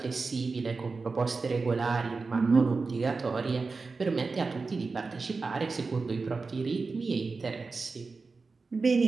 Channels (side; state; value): left; quieter; 4.2 dB